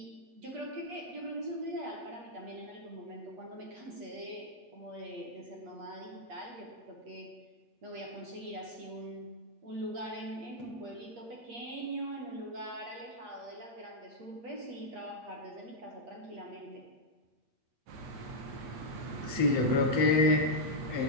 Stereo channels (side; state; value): left; late; 8.4 ms